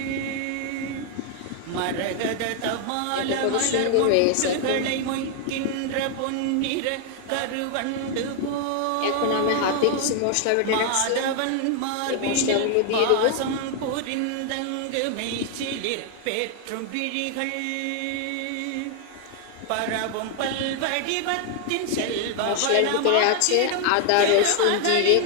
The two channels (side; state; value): both; different; correlation 0.00